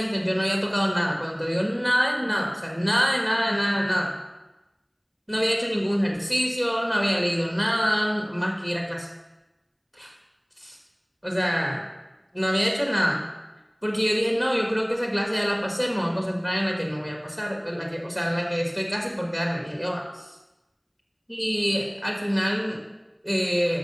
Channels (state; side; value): identical; both; correlation 1.00